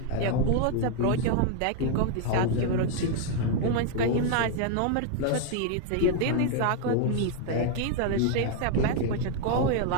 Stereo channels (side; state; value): both; different; correlation 0.01